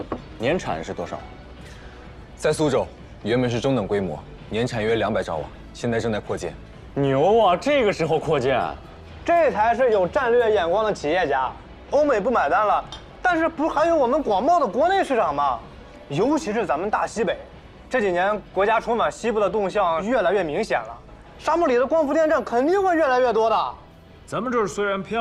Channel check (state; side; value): identical; both; correlation 1.00